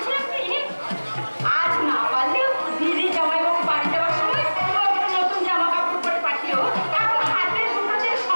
কি, আজ না পারলেও দিদি জামাইবাবু বাড়ি যাওয়ার সময় নতুন জামা কাপড় পরে পাঠিও। এখন হাতের দুটোদের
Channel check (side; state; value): both; inverted; correlation -1.00